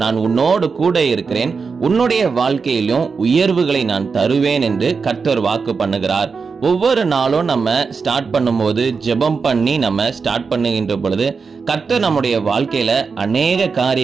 நான் உன்னோடு கூட இருக்கிறேன், உன்னுடைய வாழ்க்கையிலும் உயர்வுகளை நான் தருவேன் என்று கர்த்தர் வாக்கு பண்ணுகிறார். ஒவ்வொரு நாளும் நம்ம ஸ்டார்ட் பண்ணும்போது ஜெபம் பண்ணி நம்ம ஸ்டார்ட் பண்ணுகின்ற பொழுது கர்த்தர் நம்முடைய வாழ்க்கையில அநேக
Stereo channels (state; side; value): quieter; left; 5.1 dB